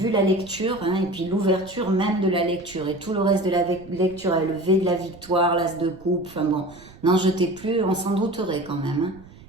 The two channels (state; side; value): noise; right; rumble, 22 dB below the sound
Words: la lecture, hein, et puis l'ouverture même de la lecture, et tout le reste de la lecture, le V de la victoire, l'As de coupe, enfin bon, n'en jetez plus, on s'en douterait quand même, hein,